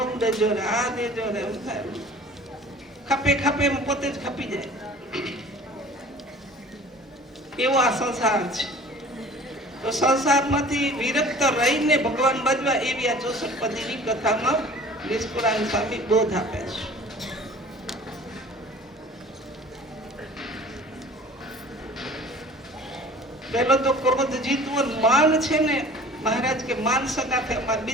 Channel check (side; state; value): both; normal; correlation 0.46